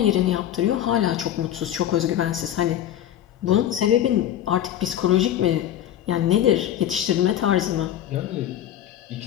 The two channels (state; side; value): quieter; right; 11.3 dB